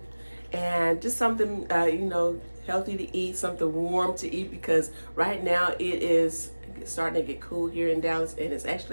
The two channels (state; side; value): inverted; both; correlation -1.00